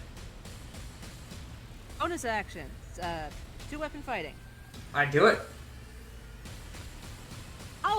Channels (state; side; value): identical; both; correlation 1.00